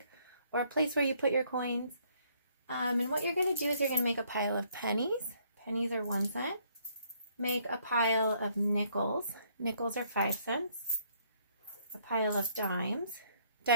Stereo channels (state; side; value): inverted; both; correlation -0.67